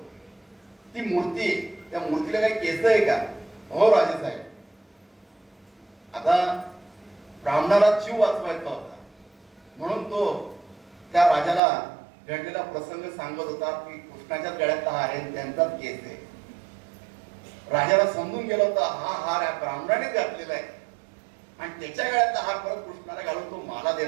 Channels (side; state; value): left; drops out; at 11.6 s